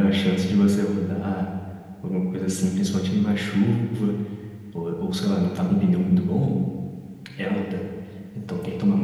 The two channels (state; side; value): identical; both; correlation 1.00